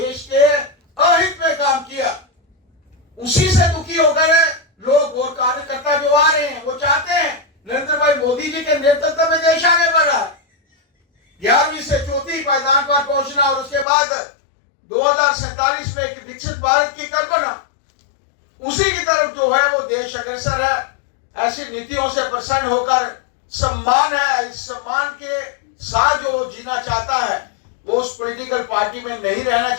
के अहित में काम किया। उसी से दुखी होकर लोग और कार्यकर्ता जो आ रहे हैं वो चाहते हैं नरेंद्र भाई मोदी जी के नेतृत्व में देश आगे बढ़ रहा है। 11वीं से 4थी पायदान पर पहुंचना और उसके बाद 2047 में एक विकसित भारत की कल्पना, उसी की तरफ जो है वो देश अग्रसर है। ऐसी नीतियों से प्रसन्न होकर सम्मान है, इस सम्मान के साथ जो जीना चाहता है वो उस पॉलिटिकल पार्टी में नहीं रहना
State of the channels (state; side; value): drops out; right; at 13.9 s